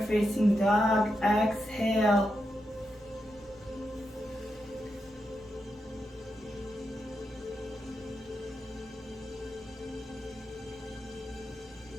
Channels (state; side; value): normal; both; correlation 0.86